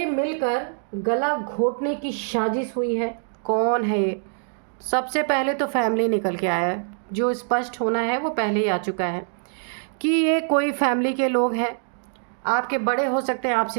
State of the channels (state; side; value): silent; left; digital silence